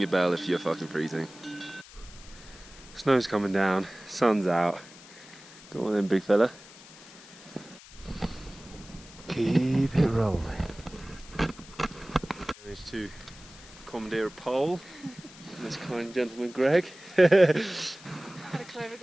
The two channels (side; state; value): left; noise; hiss, 19 dB below the sound